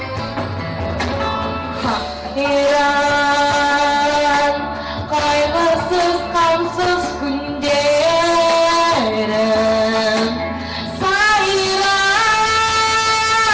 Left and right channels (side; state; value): both; identical; correlation 1.00